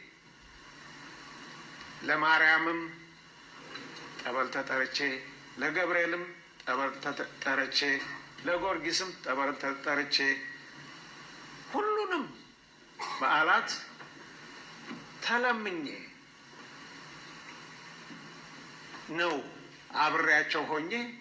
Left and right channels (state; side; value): identical; both; correlation 1.00